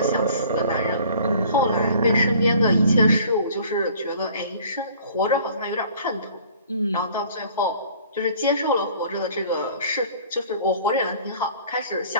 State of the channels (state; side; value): inverted; both; correlation -0.51